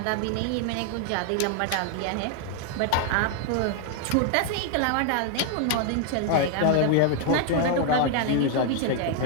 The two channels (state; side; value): different; both; correlation 0.00